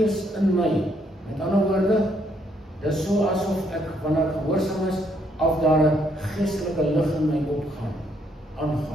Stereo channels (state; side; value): normal; both; correlation 0.71